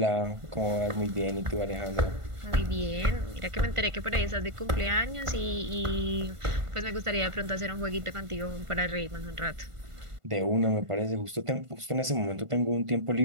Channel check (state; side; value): late; left; 1.5 ms